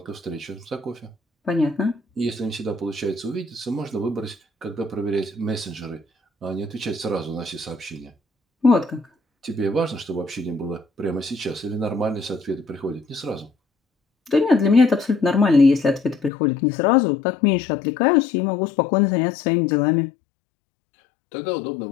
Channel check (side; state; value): right; drops out; at 16.3 s